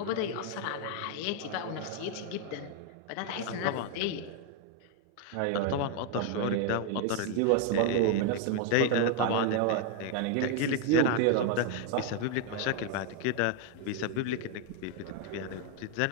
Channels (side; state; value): both; different; correlation 0.01